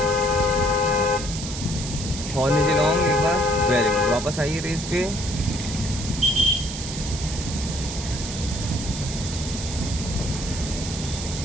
लॉन्ग एक बार, वेरी गुड। वापस आइए रेस पे,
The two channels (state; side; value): noise; right; hiss, 8 dB below the sound